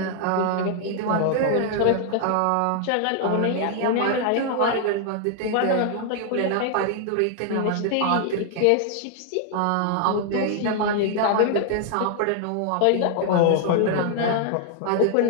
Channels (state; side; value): different; both; correlation 0.00